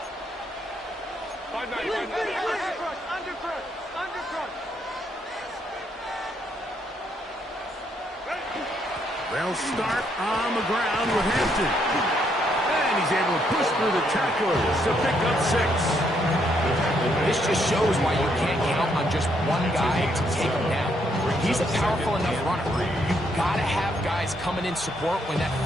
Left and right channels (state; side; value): normal; both; correlation 0.73